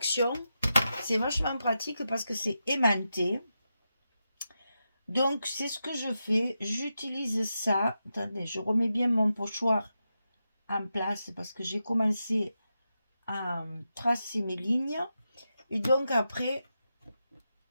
C'est vachement pratique parce que c'est aimanté. Donc, c'est ce que je fais. J'utilise ça. Attendez, je remets bien mon pochoir en place parce que j'ai commencé à tracer mes lignes et donc après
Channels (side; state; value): both; inverted; correlation -0.88